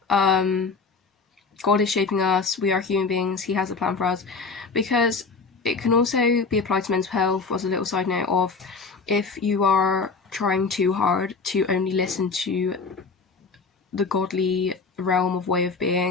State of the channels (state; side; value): quieter; right; 4.5 dB